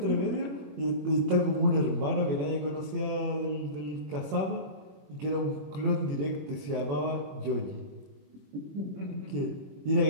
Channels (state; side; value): late; left; 21 ms